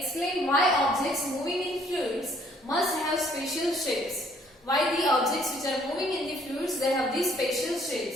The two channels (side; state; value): both; normal; correlation 0.62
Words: why objects moving in fluids must have special shapes. Why the objects which are moving in the fluids, they have these special